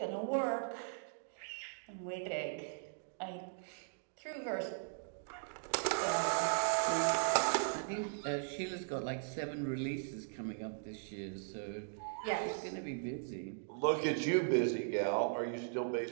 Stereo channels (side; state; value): left; silent; digital silence